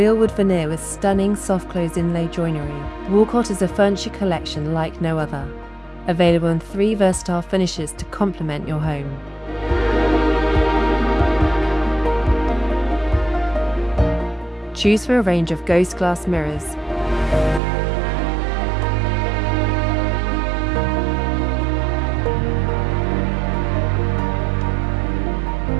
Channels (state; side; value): drops out; left; at 17.6 s